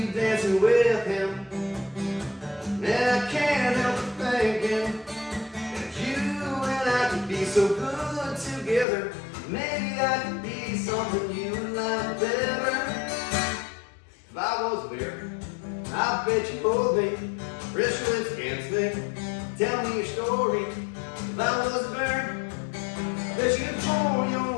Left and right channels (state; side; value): drops out; right; at 8.8 s